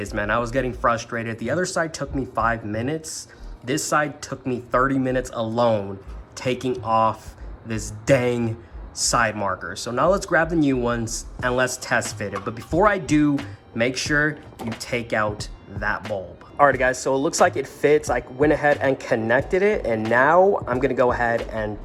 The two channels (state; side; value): identical; both; correlation 1.00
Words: man. I was getting frustrated. The other side took me 5 minutes. This side took me 30 minutes alone taking off this dang side marker. So now let's grab the new ones and let's test fit it. But before I do, make sure you take out that bulb. Alright guys, so it looks like it fits. I went ahead and connected it, and now I'm gonna go ahead and